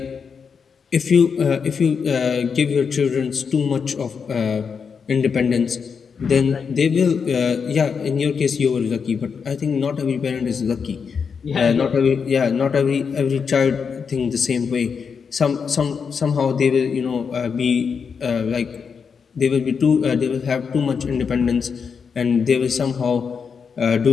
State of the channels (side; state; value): right; quieter; 6.1 dB